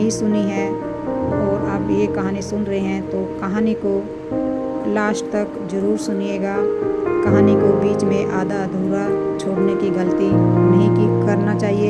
सुनी है और आप ये कहानी सुन रहे हैं तो कहानी को लास्ट तक ज़रूर सुनिएगा। कहानी को बीच में आधा अधूरा छोड़ने की गलती नहीं करना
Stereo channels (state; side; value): identical; both; correlation 1.00